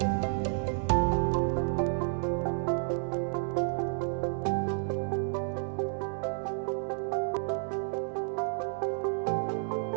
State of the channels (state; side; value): silent; left; 57 dB below the other